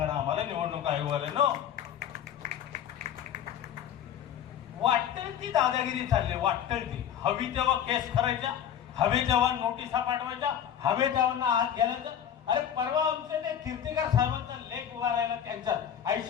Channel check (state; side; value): quieter; right; 9.4 dB